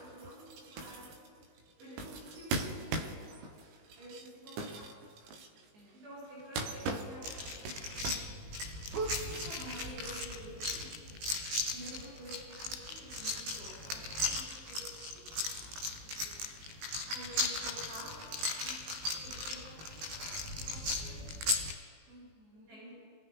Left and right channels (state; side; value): late; left; 19 ms